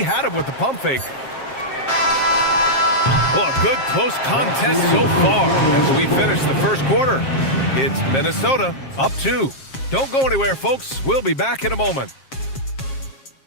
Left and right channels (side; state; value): right; late; 7.5 ms